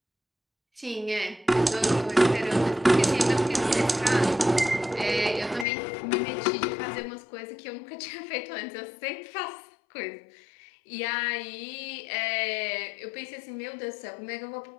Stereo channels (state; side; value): drops out; right; at 5.7 s